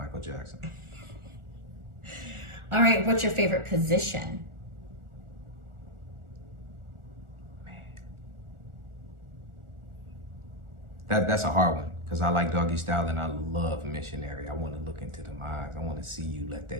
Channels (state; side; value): late; left; 1.4 ms